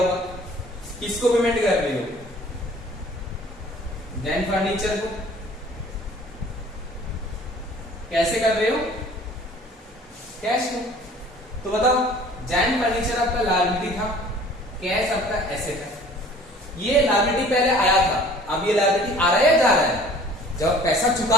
किसको पेमेंट कर रहे हो, जैन फर्नीचर को। कैसे कर रहे हो, कैश में। तो बताओ जैन फर्नीचर आपका लायबिलिटी था, कैश आपका एसेट है। ये लायबिलिटी पहले आया था, अब ये लायबिलिटी आ रहा है या जा रहा है, जब पैसा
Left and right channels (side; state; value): both; normal; correlation 0.50